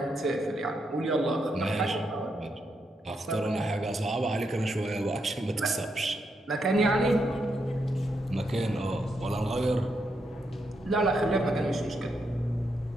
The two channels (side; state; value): both; normal; correlation 0.81